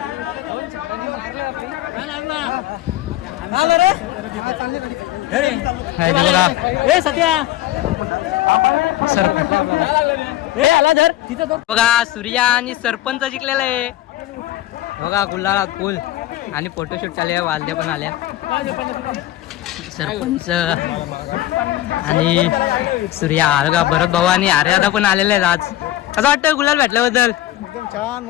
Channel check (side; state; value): right; quieter; 14.7 dB